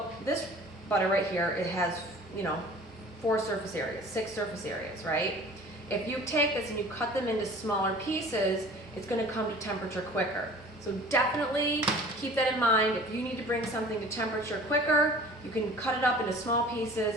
this butter right here, it has, 4 surface areas, 6 surface areas, right? If you take this and you cut them into smaller pieces, it's gonna come to temperature quicker. So definitely keep that in mind. If you need to bring something to temperature quicker, you can cut it up into small pieces,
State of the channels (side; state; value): both; normal; correlation 0.45